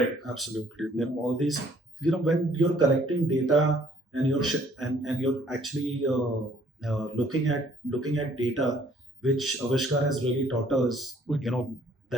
Absolutely. All these, when you're collecting data and you're actually looking at data, which Aavishkaar has really taught us,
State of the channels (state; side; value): normal; both; correlation 0.61